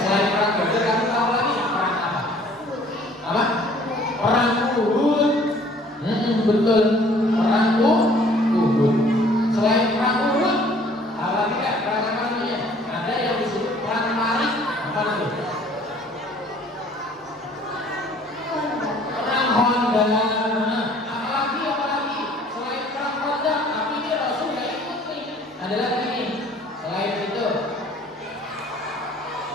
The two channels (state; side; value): normal; both; correlation 0.55